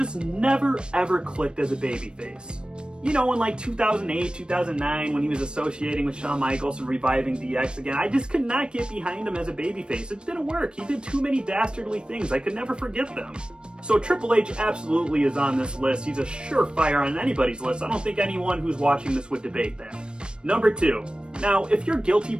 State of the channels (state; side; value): late; left; 0.053 ms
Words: never ever clicked as a babyface. You know, in 2008, 2009, when he was associating with Shawn Michaels and reviving DX again, I just could not get behind him as a babyface. It didn't work. He did too many dastardly things. I could never forget them. So Triple H absolutely is on this list. He's a surefire on anybody's list. I don't think anyone who's watching this would debate that. Number 2. Now, if you're guilty